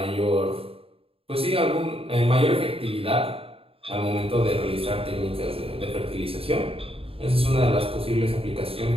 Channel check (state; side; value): late; left; 0.27 ms